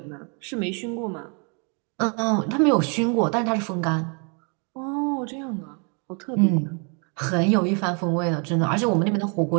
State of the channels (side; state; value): left; quieter; 36.4 dB